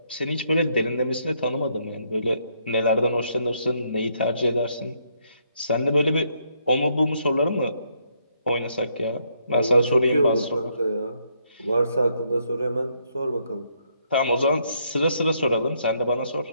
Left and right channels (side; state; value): both; inverted; correlation -0.73